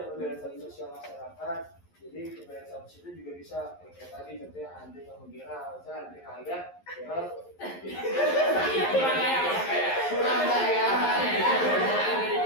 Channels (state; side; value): late; right; 11 ms